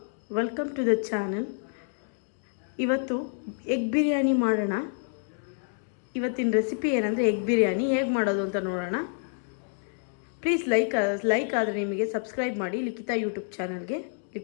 welcome to the channel. ಇವತ್ತು egg biryani ಮಾಡೋಣ. ಇವತ್ತಿನ ರೆಸಿಪಿ ಏನಂದರೆ ಎಗ್ ಬಿರಿಯಾನಿ ಹೇಗೆ ಮಾಡೋದು ಅಂತ ನೋಡೋಣ. ಪ್ಲೀಸ್ ಲೈಕ್ ಆದರೆ ನಿಮಗೆ ಸಬ್ಸ್ಕ್ರೈಬ್ ಮಾಡಿ ಲಿಖಿತಾ ಯೂಟ್ಯೂಬ್ ಚಾನಲ್ಗೆ,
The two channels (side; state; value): right; silent; 59 dB below the other